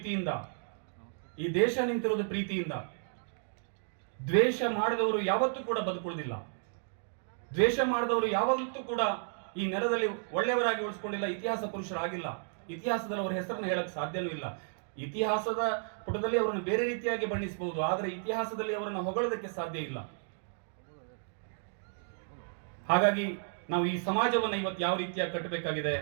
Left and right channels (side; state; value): left; silent; digital silence